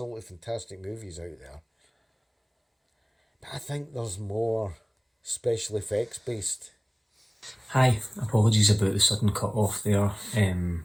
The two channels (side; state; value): both; identical; correlation 1.00